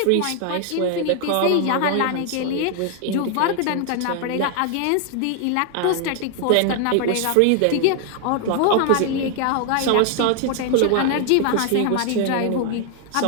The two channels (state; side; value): different; both; correlation 0.00